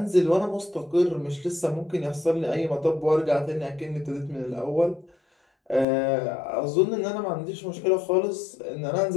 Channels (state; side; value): drops out; right; at 5.9 s